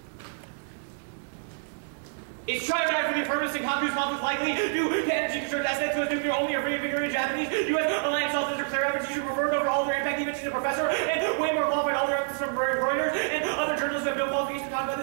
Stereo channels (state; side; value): silent; left; digital silence